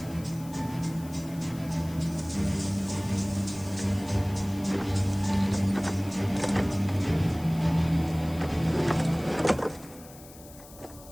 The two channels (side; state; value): left; noise; hiss, 20 dB below the sound